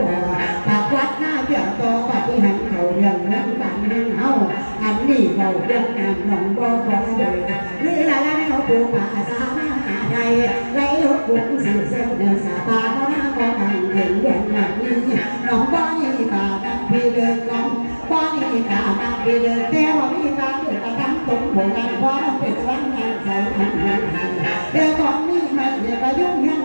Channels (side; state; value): both; inverted; correlation -1.00